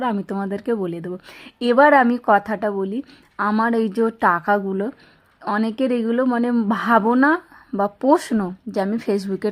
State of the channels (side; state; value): both; identical; correlation 1.00